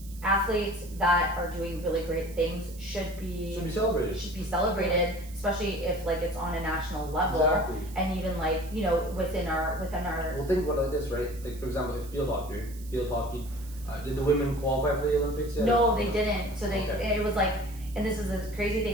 athletes that are doing really great things should be celebrated, especially if like it's on a national level. And even like, you know, within our well, think about it like this, right? Like for example, if field hockey, did the women qualify for the Olympics yet? No, they didn't. So it was like, and this is the crazy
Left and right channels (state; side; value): noise; right; hiss, 20 dB below the sound